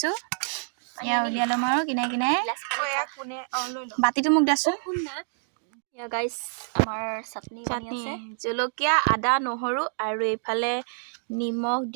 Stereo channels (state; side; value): silent; left; digital silence